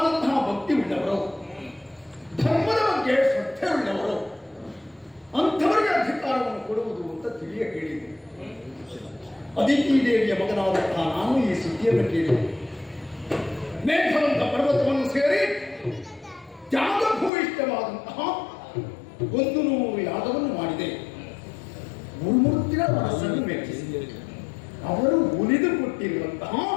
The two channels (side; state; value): right; drops out; at 17.3 s